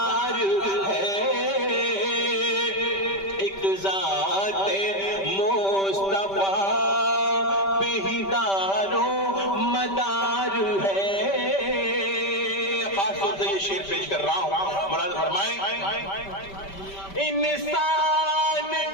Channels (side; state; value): right; late; 5.1 ms